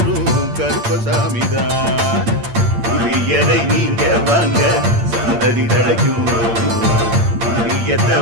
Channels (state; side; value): late; left; 8.7 ms